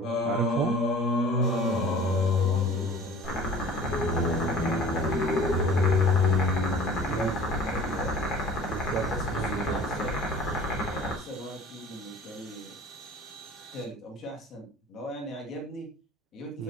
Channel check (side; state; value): both; normal; correlation 0.44